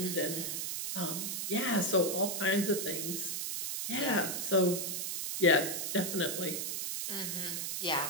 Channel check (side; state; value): right; noise; hiss, 2 dB below the sound